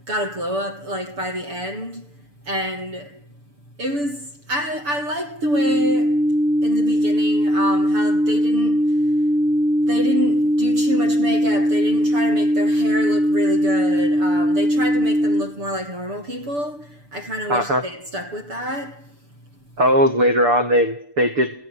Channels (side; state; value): left; late; 6.9 ms